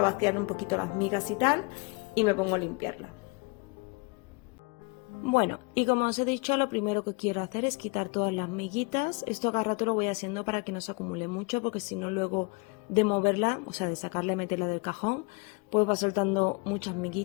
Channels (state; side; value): quieter; right; 29.9 dB